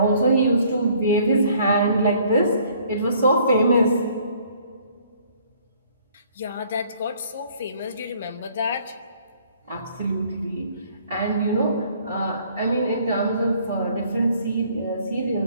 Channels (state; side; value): inverted; both; correlation -0.60